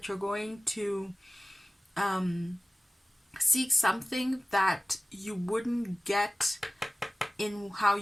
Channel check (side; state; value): both; normal; correlation 0.97